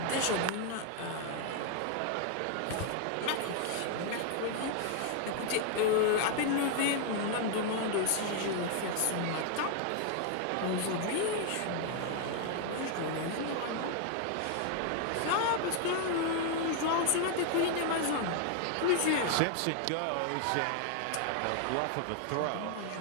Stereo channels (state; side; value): different; both; correlation 0.00